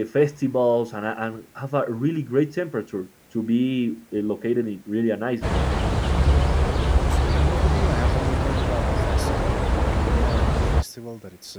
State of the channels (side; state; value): both; identical; correlation 1.00